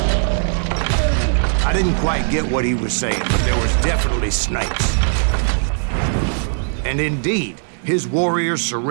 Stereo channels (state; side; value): silent; left; digital silence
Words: I didn't quite get what he was saying, but there was definitely snakes. And indeed, his warriors